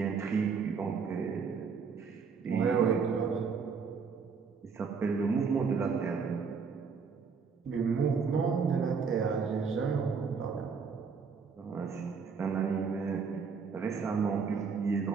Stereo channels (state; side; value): quieter; left; 5.6 dB